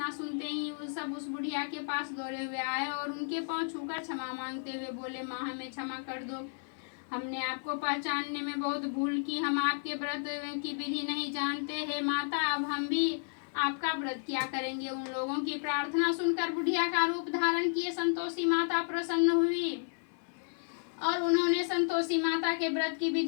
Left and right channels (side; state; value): right; silent; 56 dB below the other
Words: सुनते ही वो सब उस बुढ़िया के पास दौड़े हुए आए और उनके पांव छूकर क्षमा मांगते हुए बोले, माँ हमें क्षमा कर दो, हमने आपको पहचानने में बहुत भूल की, हम आपके व्रत की विधि नहीं जानते हैं माता, अब हम भी आपका व्रत किया करेंगे। उन लोगों की प्रार्थना सुनकर बुढ़िया का रूप धारण किए संतोषी माता प्रसन्न हुई और उन्होंने संतोषी माता के व्रत की